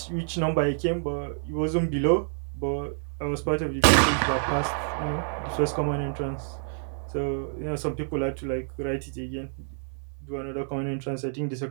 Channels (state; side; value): silent; left; 57 dB below the other